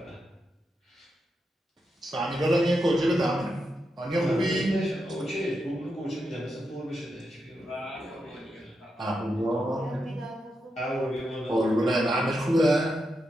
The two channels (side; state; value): both; normal; correlation 0.86